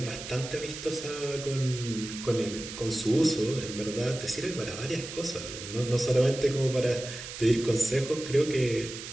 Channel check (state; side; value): noise; right; hiss, 10 dB below the sound